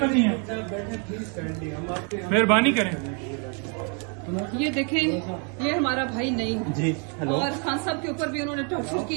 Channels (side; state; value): left; quieter; 38.0 dB